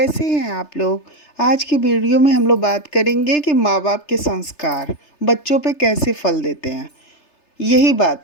हैं आप लोग। आज की वीडियो में हम लोग बात करेंगे कि माँ बाप के संस्कार बच्चों पे कैसे फल देते हैं। यही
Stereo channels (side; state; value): right; late; 3.3 ms